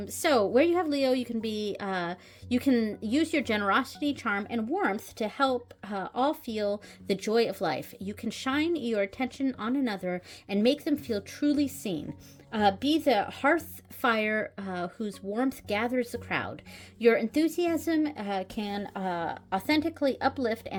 So where you have Leo, you can use your generosity, charm, and warmth to help all feel the joy of life. You can shine your attention on another and make them feel truly seen. Be the hearth fire whose warmth gathers the crowd. Your enthusiasm can authentically uplift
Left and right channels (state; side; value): identical; both; correlation 1.00